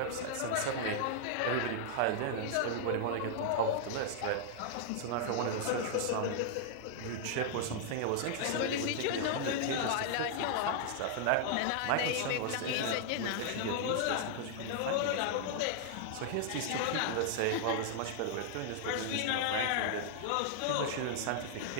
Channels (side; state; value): both; different; correlation 0.00